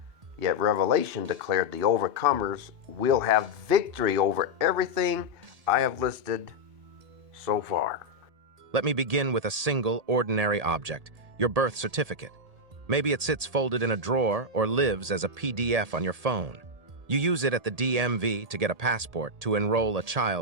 Yet Revelation declared the overcomers will have victory over everything I have listed so far. Let me begin with a single, ordinary object, your birth certificate. Maybe it sits folded in a drawer or lives as a PDF on your phone. You use it at the DMV to get a passport to enroll a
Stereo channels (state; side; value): late; left; 1.8 ms